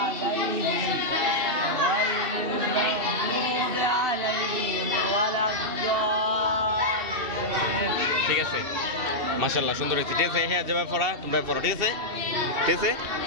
ঠিক আছে মাশাআল্লাহ সুন্দর হয়েছে ঠিক আছে হ্যাঁ যাবে পড়া তোমরা পড়ো ঠিক আছে ঠিক আছে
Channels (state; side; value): late; left; 2.7 ms